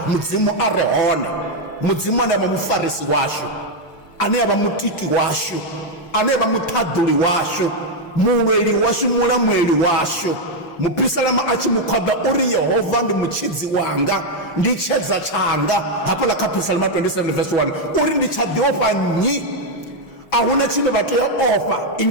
mudzimu a re hone, mudzimu ane avha mufarisi washu, ane avha mutiki washu, ane avha muṱhaḓuli washu, mulweli washu, mulamuleli washu. Mupisalama a tshi mukhoḓa uri Yehova ndi mutshidzi wanga, ndi tshedza tshanga, hafhaḽa kha Psalm 27 verse 1 uri ndi tsha ḓi ofha nnyi. A huna tshine vha tea ofha, i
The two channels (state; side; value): late; right; 6.0 ms